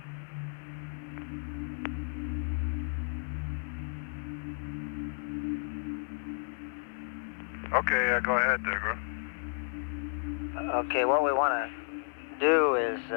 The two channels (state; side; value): silent; right; digital silence